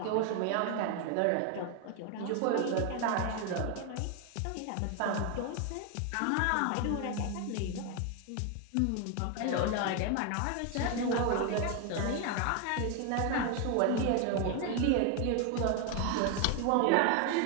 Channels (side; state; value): both; different; correlation 0.01